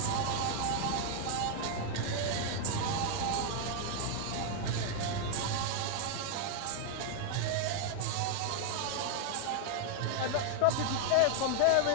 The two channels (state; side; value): different; both; correlation 0.00